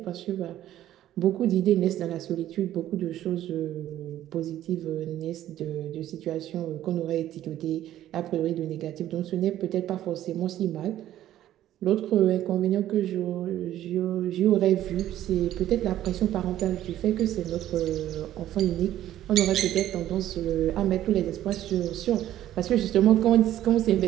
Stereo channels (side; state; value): left; quieter; 12.8 dB